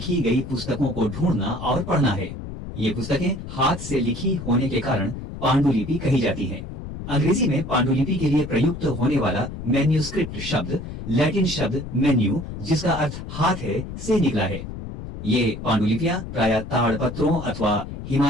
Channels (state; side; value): noise; left; rumble, 9 dB below the sound